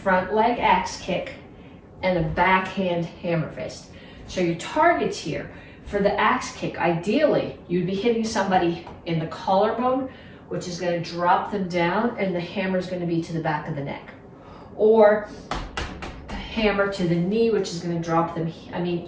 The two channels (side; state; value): both; identical; correlation 1.00